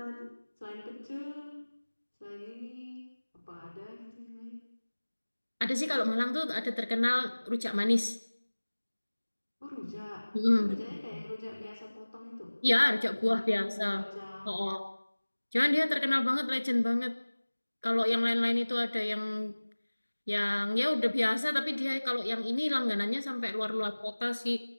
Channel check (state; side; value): inverted; both; correlation -1.00